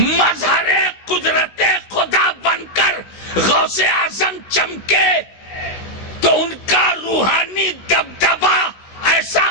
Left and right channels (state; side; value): late; right; 17 ms